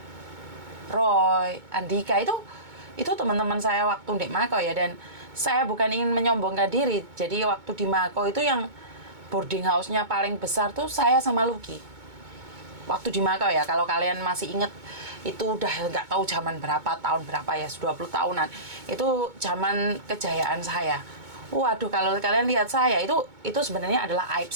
Roy, Andika, itu teman-teman saya waktu di Makau ya. Dan saya bukan ingin menyombongkan diri. Jadi waktu di Makau itu yang boarding house-nya paling besar tuh saya sama Lucky. Waktu di Makau ya, kalau kalian masih inget, itu udah nggak tahu zaman berapa, tahun berapa ya, 20 tahunan. Itu zaman kejayaan saya. Waduh, kalau kalian lihat saya, itu sebenarnya adalah aib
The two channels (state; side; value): late; left; 2.2 ms